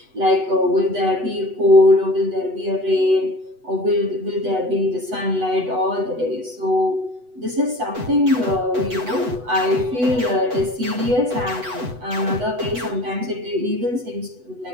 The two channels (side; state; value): left; late; 8.1 ms